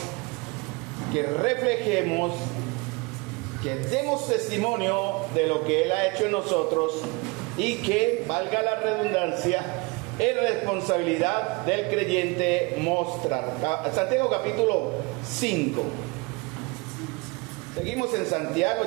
que reflejemos, que demos testimonio de lo que Él ha hecho en nosotros y que, valga la redundancia, es responsabilidad del creyente mostrar. Santiago capítulo 5. Seguimos en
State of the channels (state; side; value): quieter; left; 27.1 dB